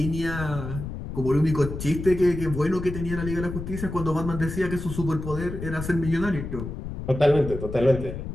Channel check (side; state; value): left; noise; rumble, 7 dB below the sound